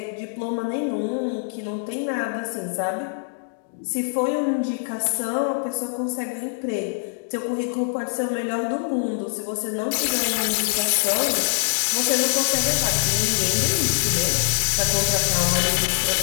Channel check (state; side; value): silent; right; digital silence